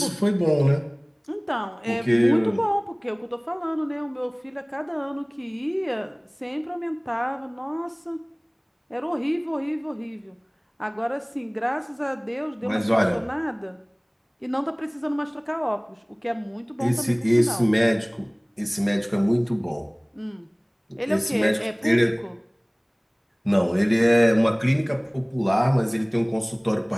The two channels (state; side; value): identical; both; correlation 1.00